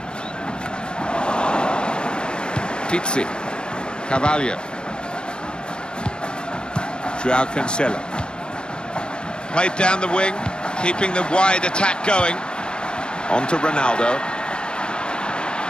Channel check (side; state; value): right; late; 0.053 ms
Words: Pizzi, Carvalho, Joao Cancelo. Played down the wing, keeping the wide attack going. On to Ronaldo.